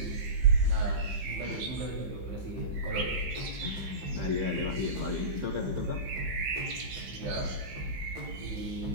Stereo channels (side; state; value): left; late; 15 ms